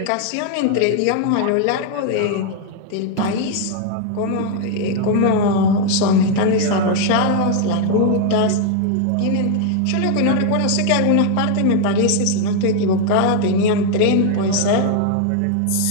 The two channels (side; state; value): both; different; correlation 0.00